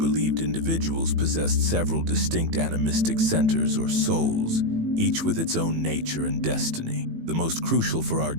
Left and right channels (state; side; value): late; left; 18 ms